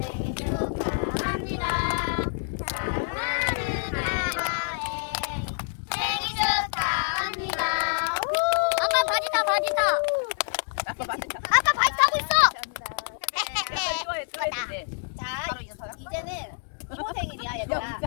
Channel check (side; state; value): right; silent; digital silence